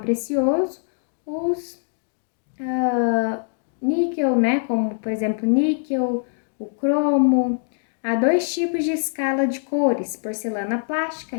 os níquel, como por exemplo níquel, o cromo. Há 2 tipos de escala de cores, porcelana plástica,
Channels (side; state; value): right; silent; digital silence